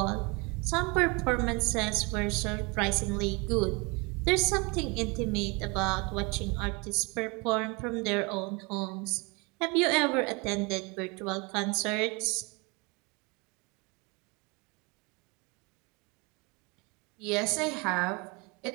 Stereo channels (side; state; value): left; quieter; 28.7 dB